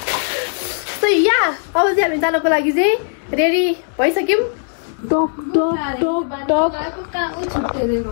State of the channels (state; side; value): silent; right; 63 dB below the other